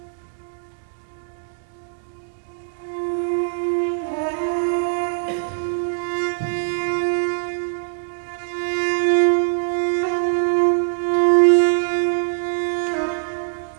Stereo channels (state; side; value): silent; left; digital silence